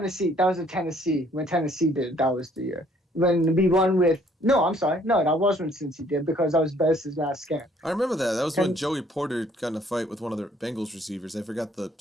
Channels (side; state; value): both; normal; correlation 0.62